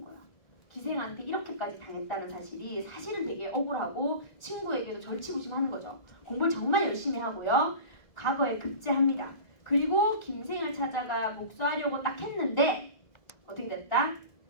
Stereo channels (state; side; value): late; right; 1.7 ms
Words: 거야. 기생한테 이렇게까지 당했다는 사실이 사실은 되게 억울하고 친구에게도 절치부심하는 거죠. 공부를 정말 열심히 하고요. 과거에 급제합니다. 그리고 김생을 찾아가 복수하려고 딱 했는데 어떻게 됐다?